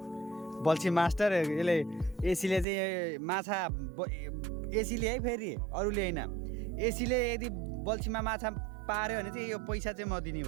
बल्छी मास्टर। यसले एसीले चाहिँ माछा एसीले है, फेरि अरूले होइन। एसीले यदि बल्छीमा माछा पार्यो भने चाहिँ यो पैसा चाहिँ म दिने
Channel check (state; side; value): drops out; left; at 2.7 s